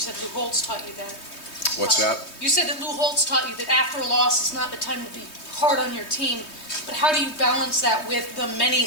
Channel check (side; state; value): right; late; 3.2 ms